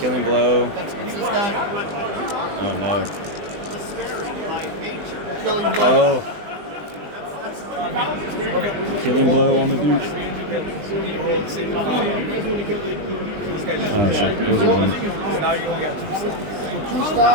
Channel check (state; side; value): late; left; 20 ms